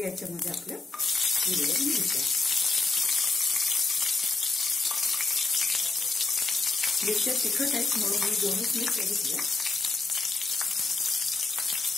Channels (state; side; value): quieter; right; 3.6 dB